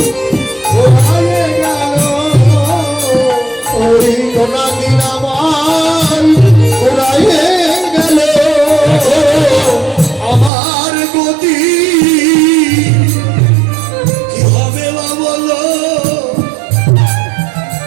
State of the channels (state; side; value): drops out; left; at 10.5 s